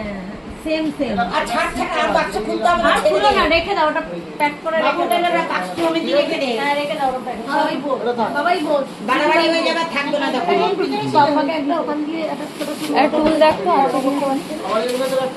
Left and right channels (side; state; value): both; identical; correlation 1.00